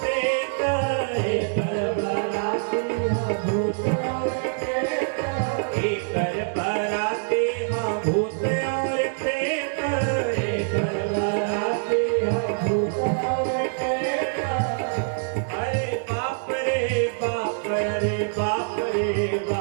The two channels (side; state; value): left; silent; 61 dB below the other